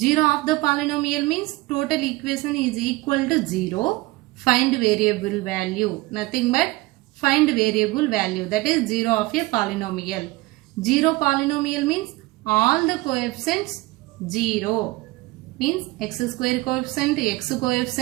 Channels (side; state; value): left; quieter; 20.8 dB